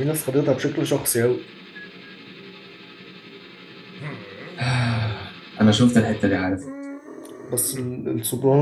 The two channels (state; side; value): identical; both; correlation 1.00